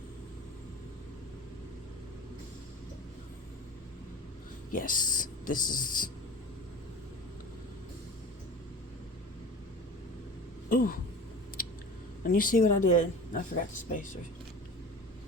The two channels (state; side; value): normal; both; correlation 0.36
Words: Yes, this is... Ooh. And you see what I did? I forgot the spacers.